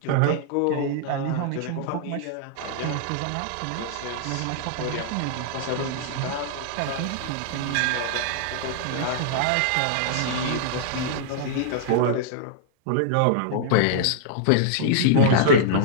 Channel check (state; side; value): different; both; correlation -0.01